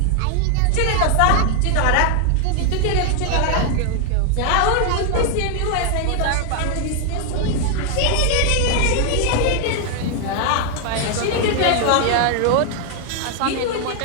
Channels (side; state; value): both; different; correlation 0.00